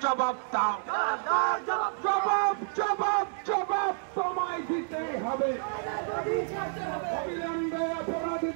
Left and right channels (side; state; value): left; silent; digital silence